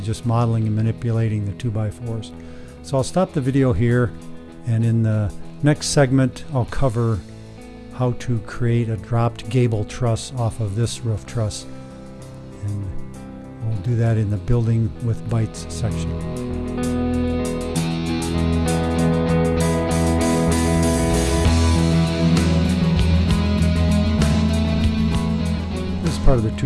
just modeling and manipulating the 2x4s. So I'll stop the video here, and in the next segment I'll cover how to create a dropped gable truss off of this roof truss. And we'll do that in the Building with Bytes section. Part of the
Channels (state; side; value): identical; both; correlation 1.00